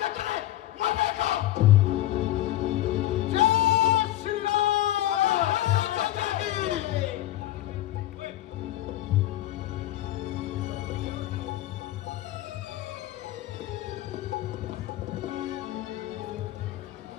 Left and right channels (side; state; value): right; quieter; 14.5 dB